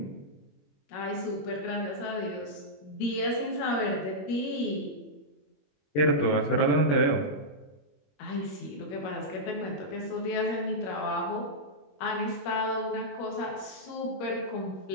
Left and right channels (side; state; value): right; late; 21 ms